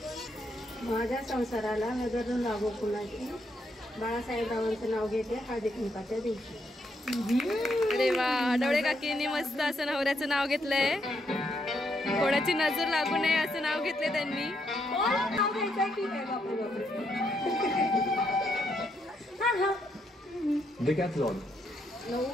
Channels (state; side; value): normal; both; correlation 0.77